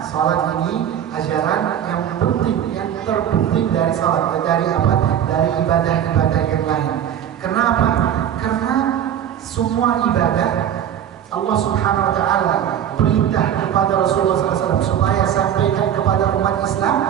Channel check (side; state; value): left; quieter; 9.8 dB